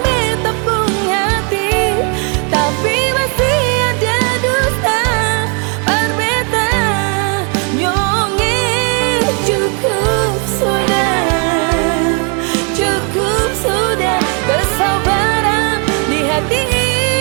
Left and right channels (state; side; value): quieter; left; 36.9 dB